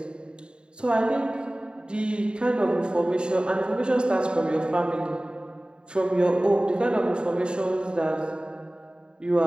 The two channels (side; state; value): left; late; 0.051 ms